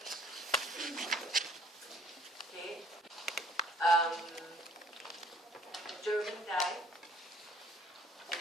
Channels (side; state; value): both; normal; correlation 0.58